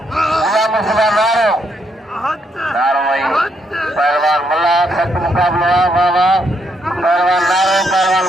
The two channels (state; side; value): normal; both; correlation 0.75